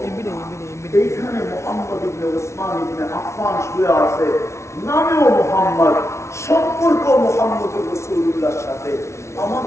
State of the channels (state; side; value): late; right; 0.13 ms